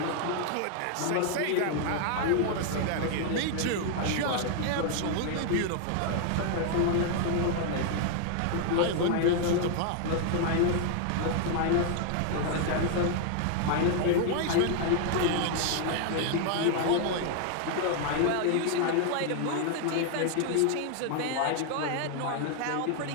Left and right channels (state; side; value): different; both; correlation 0.00